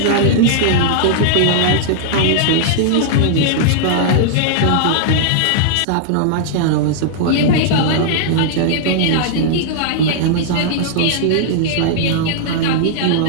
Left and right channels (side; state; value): both; different; correlation -0.01